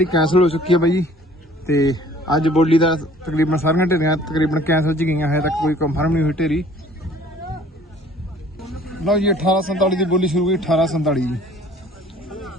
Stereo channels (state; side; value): normal; both; correlation 0.53